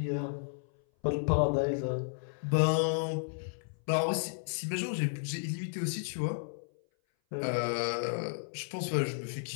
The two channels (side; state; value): right; silent; 56 dB below the other